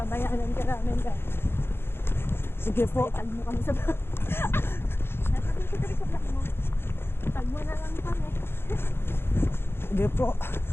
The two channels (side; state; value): right; late; 0.11 ms